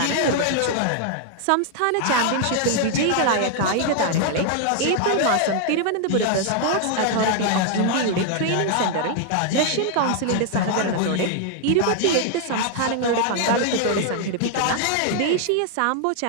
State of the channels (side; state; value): both; different; correlation 0.00